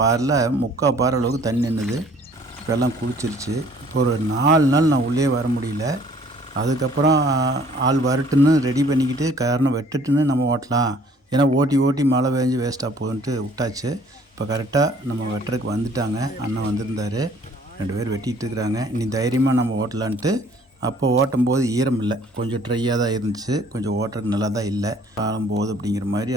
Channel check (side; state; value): both; normal; correlation 0.56